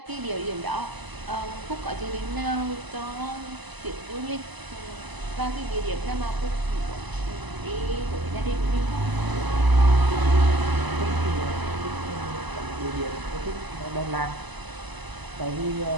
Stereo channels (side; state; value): left; late; 1.0 ms